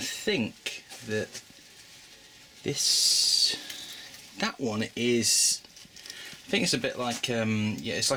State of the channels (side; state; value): both; identical; correlation 1.00